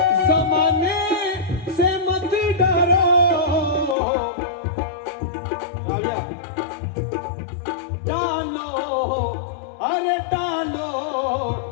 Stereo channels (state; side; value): drops out; right; at 4.0 s